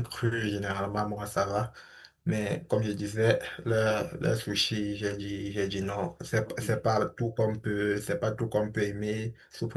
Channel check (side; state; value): both; identical; correlation 1.00